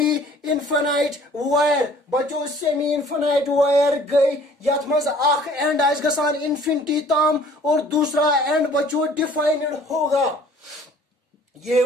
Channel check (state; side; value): normal; both; correlation 0.53